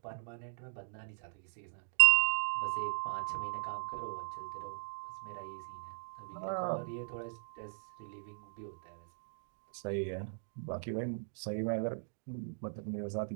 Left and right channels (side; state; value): left; silent; digital silence